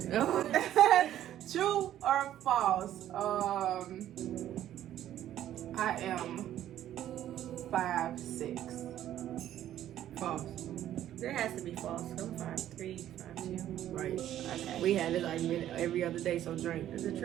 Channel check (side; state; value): left; quieter; 12.0 dB